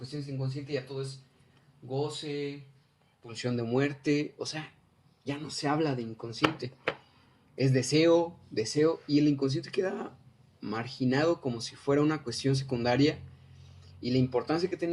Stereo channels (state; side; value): identical; both; correlation 1.00